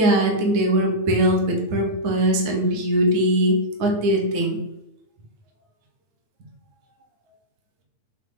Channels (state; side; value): late; left; 9.4 ms